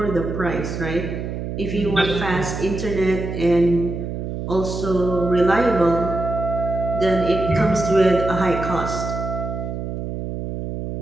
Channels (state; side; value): noise; right; hum, 5 dB below the sound